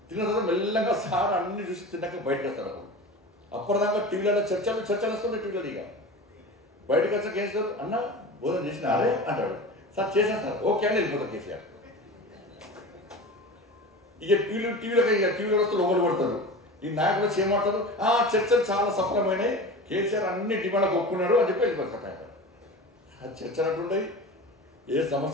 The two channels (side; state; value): both; normal; correlation 0.32